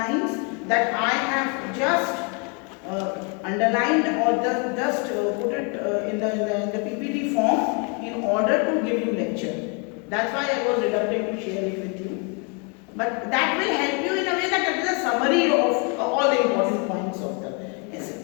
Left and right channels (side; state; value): right; quieter; 35.2 dB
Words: that I have just underlined or just put it in the PPT form in order to give you lecture. That's why I was reluctant to share it with you. But that will help you in a way that it is a summary of all the important points of the